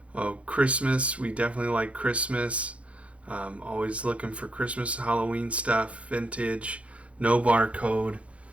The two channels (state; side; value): late; left; 0.063 ms